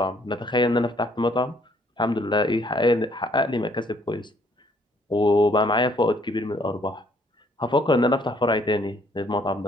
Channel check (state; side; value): normal; both; correlation 0.65